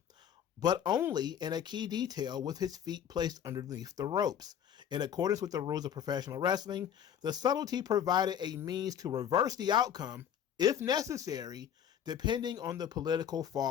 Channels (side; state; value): right; quieter; 9.1 dB